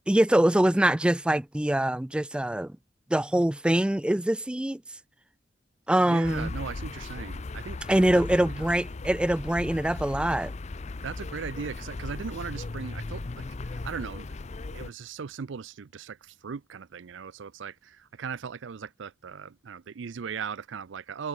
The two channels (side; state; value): both; normal; correlation 0.91